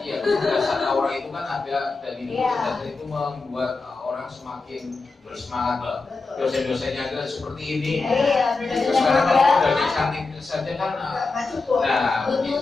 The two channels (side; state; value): right; quieter; 3.9 dB